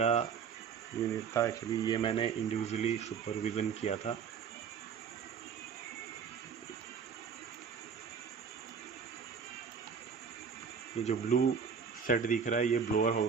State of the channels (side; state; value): left; quieter; 6.5 dB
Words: यूनिट था एक्चुअली, ये मैंने इंडिविजुअली सुपरविज़न किया था। ये जो ब्लू सेट दिख रहा है ये ब्लोअर